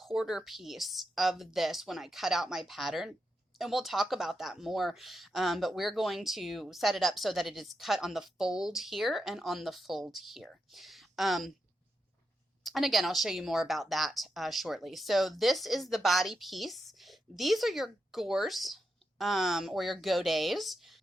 piece of this when I cut out my pattern. And we'll talk about that more, but we're going to set it up so that it is cut on the fold here and on the fold here. And again, I'll show you more about that shortly. So this is the body piece. These are your gores or your godets.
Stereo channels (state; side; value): normal; both; correlation 0.85